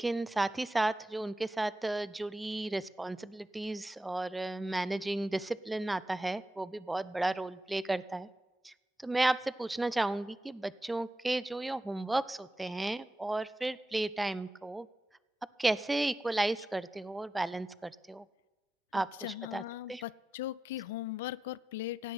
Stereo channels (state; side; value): normal; both; correlation 0.91